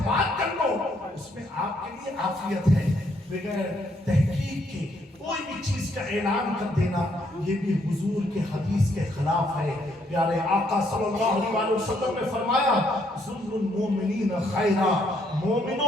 بات کر لو, اس میں آپ کے لیے عافیت ہے. بغیر تحقیق کے کوئی بھی چیز کا اعلان کر دینا یہ بھی حضور کے حدیث کے خلاف ہے. پیارے آقا صلی اللہ علیہ وسلم نے فرمایا ظلم المومنین خیرا,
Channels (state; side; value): normal; both; correlation 0.71